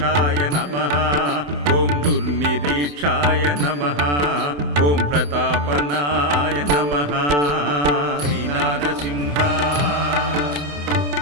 నమః. ఓం దుర్నిరీక్షాయ నమః. ఓం ప్రతాపనాయ నమః. శ్రీనారసింహ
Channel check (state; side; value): late; left; 27 ms